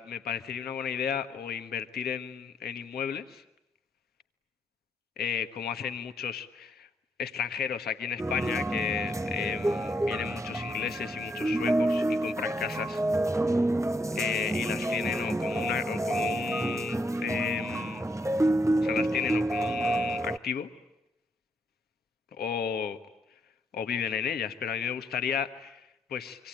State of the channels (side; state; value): both; normal; correlation 0.76